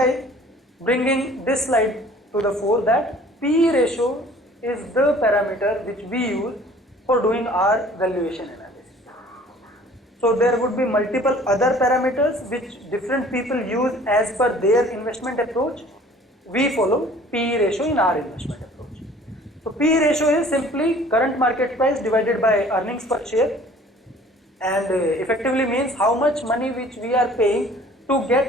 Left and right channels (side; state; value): both; normal; correlation 0.51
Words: bringing this slide to the fore, that PE ratio is the parameter which we use for doing our valuation analysis. So there would be multiple other parameters which different people use as per their investment approach. We follow PE ratio in our investment approach. So PE ratio is simply current market price divided by earnings per share, and effectively means how much money which we are paying to